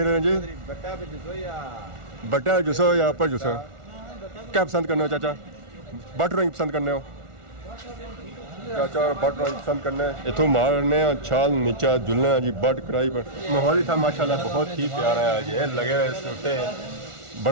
रहे हैं जी ਬੱਟਾ ਵਿੱਚ ਜੁਸੋ ਜਾਂ बटा जुसो या अपर जुसो क्या पसंद करने हो चाचा बट ड्राइंग पसंद करने हो चाचा बट ड्राइंग पसंद करने इथों मारने छाल नीचा जुलने जी बट कढ़ाई पर माहौल ही था माशाल्लाह बहुत ही प्यारा है ये लगे हुए सूटे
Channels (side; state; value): left; late; 1.4 ms